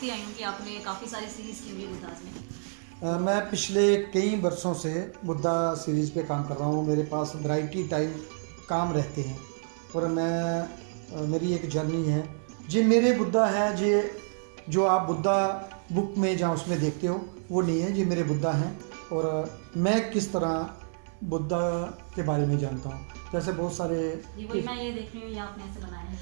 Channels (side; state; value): left; silent; 59 dB below the other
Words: आई हूँ कि आपने काफ़ी सारी सीरीज़ की हुई है बुद्धाज में। मैं पिछले कई वर्षों से बुद्धा सीरीज़ पे काम कर रहा हूँ। मेरे पास वैरायटी टाइप काम रहते हैं और मेरी एक जर्नी है। जी मेरे बुद्धा है, जी जो आप बुद्धा बुक में जहाँ उसमें देखते हो वो नहीं है, जी मेरे बुद्धा हैं। और मैं किस तरह बुद्धा के बारे में जानता हूँ, जैसे बहुत सारे वही मैं ये देख रही हूँ, ये आपने ऐसे बनाए हैं,